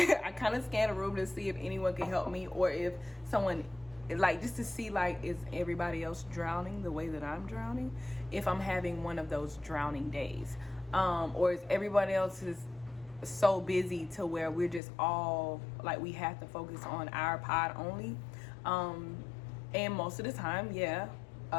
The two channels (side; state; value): right; drops out; at 14.8 s